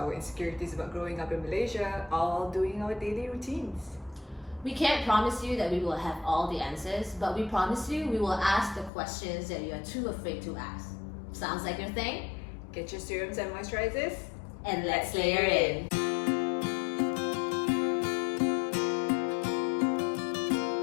insecurities about growing up in Malaysia, all doing our daily routines. We can't promise you that we will have all the answers, but we promise you we will ask the questions that you are too afraid to ask. Sounds like your thing? Get your serums and moisturizers, And let's layer in.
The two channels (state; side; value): drops out; right; at 8.9 s